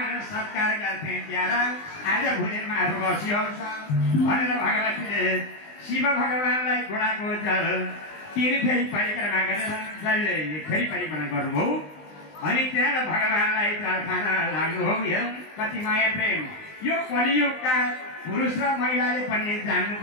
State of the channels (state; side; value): late; right; 20 ms